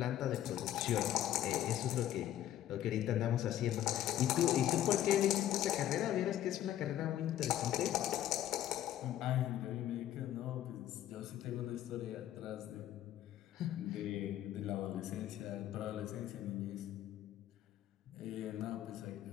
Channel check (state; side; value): quieter; right; 12.3 dB